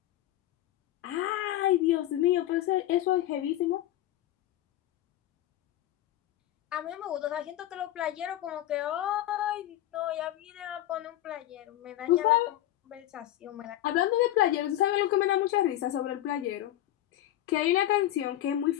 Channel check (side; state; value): right; quieter; 13.6 dB